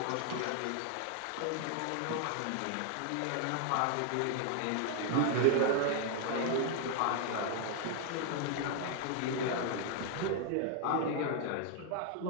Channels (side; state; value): both; different; correlation 0.00